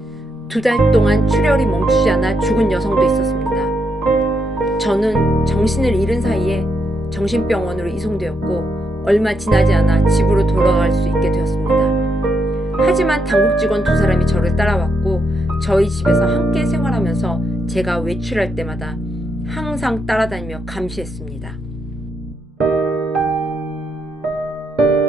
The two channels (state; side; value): normal; both; correlation 0.79